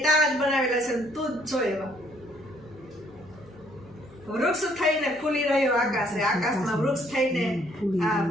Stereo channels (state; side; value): noise; left; hum, 24 dB below the sound